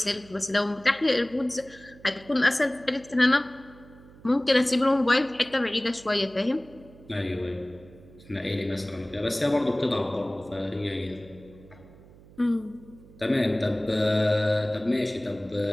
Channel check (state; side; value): noise; right; hum, 23 dB below the sound